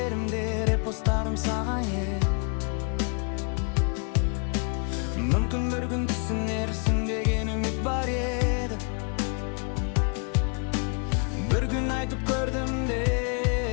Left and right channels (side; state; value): right; quieter; 38.9 dB